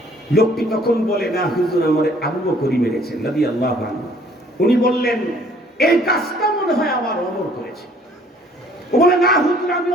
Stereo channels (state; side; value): normal; both; correlation 0.58